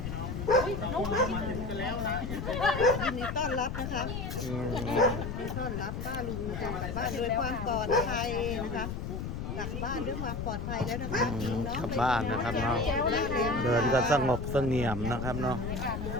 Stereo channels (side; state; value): left; noise; rumble, 5 dB below the sound